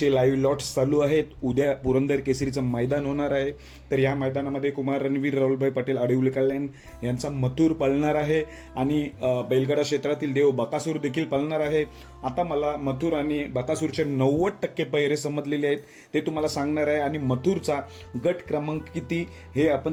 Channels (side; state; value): both; identical; correlation 1.00